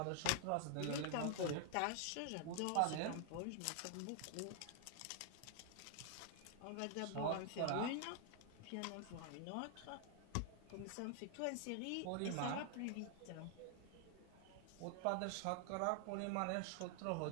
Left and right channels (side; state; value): both; different; correlation 0.00